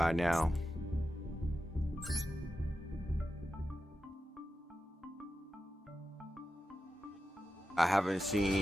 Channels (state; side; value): normal; both; correlation 0.91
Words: now. I haven't